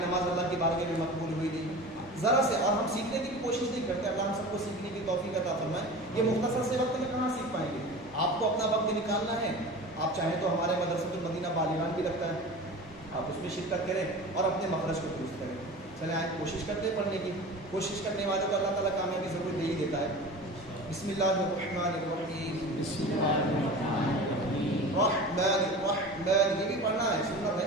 اللہ کی بارگاہ میں مقبول ہوئی نہیں ذرا سے, اور ہم سیکھنے کی کوشش نہیں کرتے. اللہ ہم سب کو سیکھنے کی توفیق عطا فرمائے. یہ مختصر سے وقت میں کہاں سیکھ پائیں گے؟ آپ کو اپنا وقت نکالنا ہے, آپ چاہیں تو ہمارے مدرسۃ المدینہ بالیغان بھی لگتا ہے، آپ اس میں شرکت کریں اور اپنے مخرج کو درست کریں. چلیں آج کوشش کرتے ہیں پڑھنے کی. کوشش کرنے والے کو اللہ تعالیٰ کامیابی ضرور دے ہی دیتا ہے. بسم اللہ الرحمن الرحیم. بسم اللہ الرحمن الرحیم. رحمن الرحمن، یہ بھی پڑھنا ہے، سنت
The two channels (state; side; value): normal; both; correlation 0.35